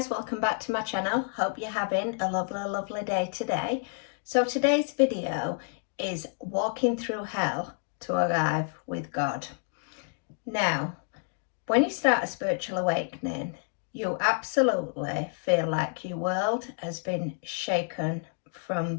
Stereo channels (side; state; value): right; silent; 58 dB below the other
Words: welcome back to my channel. Hope you're having a lovely day today. So today's video is walking through hell to arrive with God. Now, when you start a spiritual awakening, you absolutely feel like your world has been shaken from